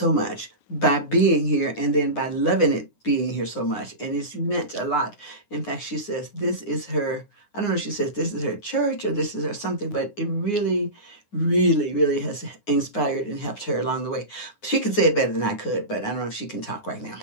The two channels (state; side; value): late; right; 9.7 ms